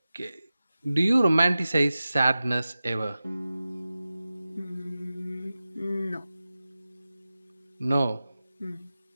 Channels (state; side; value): inverted; both; correlation -0.95